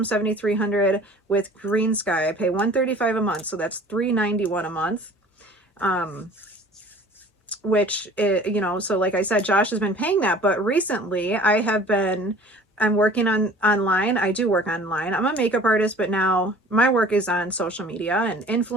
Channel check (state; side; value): normal; both; correlation 0.47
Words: $7,300 with Green Sky. I pay $135 a month, so that's $391 a month. Which, you know, so like I said, Josh has been paying that, but recently I have been I'm working on online. I do work online. I'm a makeup artist, but now my work is on social media and